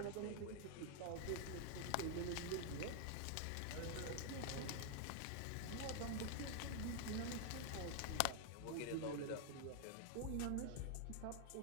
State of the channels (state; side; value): different; both; correlation 0.00